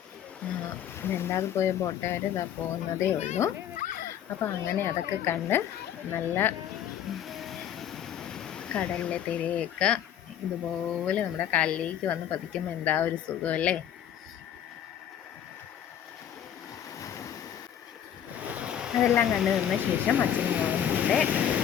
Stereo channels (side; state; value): right; quieter; 9.9 dB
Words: രണ്ടാമത് പോയ ബോട്ടുകാർ ഇതാ പോകുന്നതേ ഉള്ളൂ. അപ്പോൾ അങ്ങനെ അതൊക്കെ കണ്ട് നല്ല കടലിലെ തിരയൊക്കെ ഇതുപോലെ നമ്മുടെ കാലിലേക്ക് വന്ന് പതിക്കുമ്പോൾ എന്താ ഒരു സുഖമല്ലേ. അതെല്ലാം കണ്ടു നിന്ന ശേഷം അച്ഛനും മോളുടെ